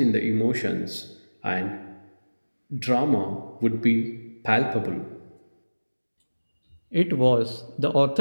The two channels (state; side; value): inverted; both; correlation -1.00